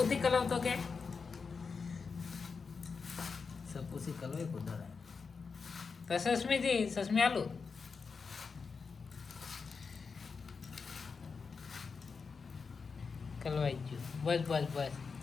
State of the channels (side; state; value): right; quieter; 5.1 dB